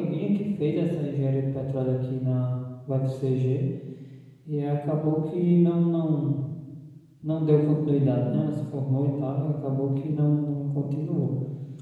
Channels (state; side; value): identical; both; correlation 1.00